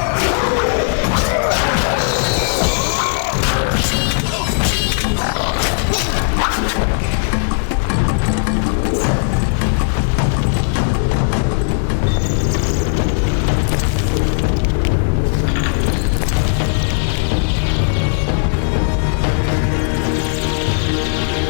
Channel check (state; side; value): silent; right; digital silence